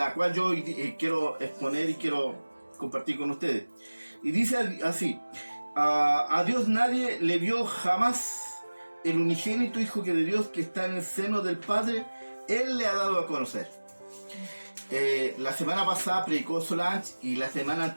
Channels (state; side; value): inverted; both; correlation -1.00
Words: cual yo quiero exponer y quiero compartir con ustedes. Y dice así: a Dios nadie le vio jamás, el unigénito Hijo de Dios que está en el seno del Padre, Él le ha dado a conocer. La semana pasada predicó Solange y la semana